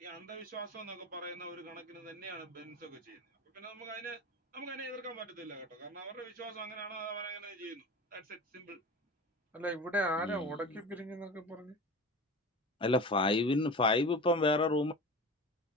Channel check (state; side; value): normal; both; correlation 0.32